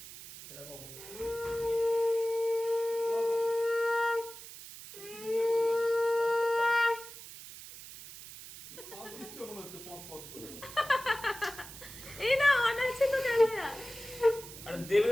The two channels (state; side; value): noise; right; hiss, 14 dB below the sound